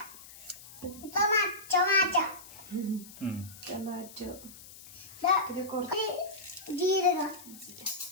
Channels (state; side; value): noise; left; hiss, 18 dB below the sound